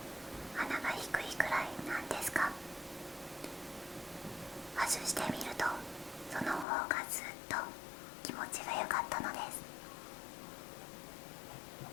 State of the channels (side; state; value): right; drops out; at 6.7 s